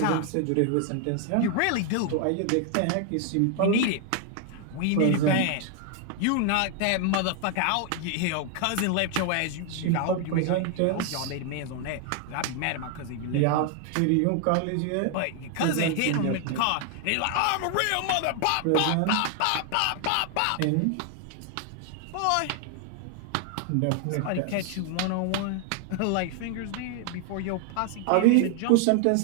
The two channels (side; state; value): both; different; correlation 0.00